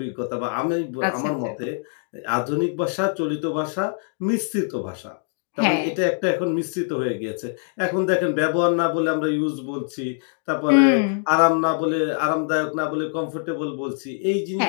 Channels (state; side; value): silent; right; digital silence